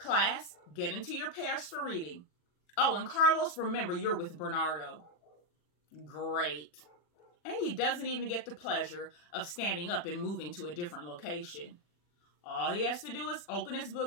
get into your pairs for reading. Oh, and Carlos, remember you're with Bernardo. Great. And he doesn't even get the pleasure of standing up and moving to a different location. All he has to do is open his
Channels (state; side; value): late; right; 40 ms